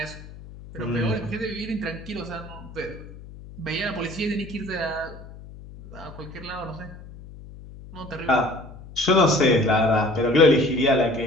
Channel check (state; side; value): noise; left; hum, 16 dB below the sound